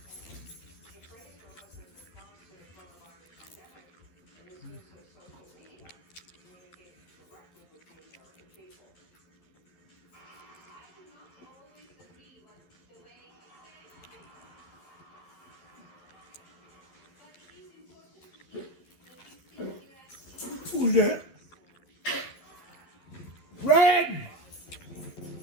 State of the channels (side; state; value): right; late; 12 ms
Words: Who's that? Red!